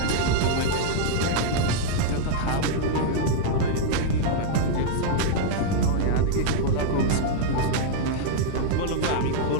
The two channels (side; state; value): both; different; correlation -0.02